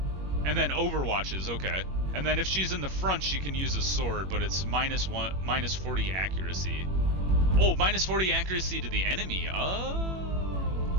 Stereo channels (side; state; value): left; late; 21 ms